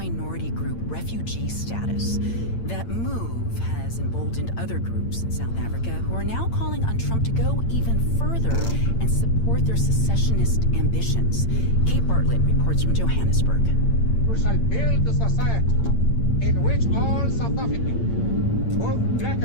group refugee status. That move has emboldened other groups in South Africa who are now calling on Trump to go even further and support their secessionist ambitions. Kate Bartlett reports from Johannesburg. We shall build a society in which all South Africans, both black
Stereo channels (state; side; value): late; right; 8.8 ms